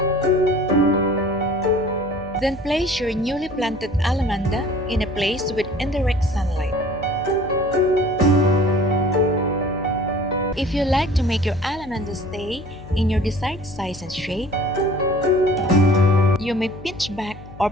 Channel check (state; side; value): noise; left; hum, 18 dB below the sound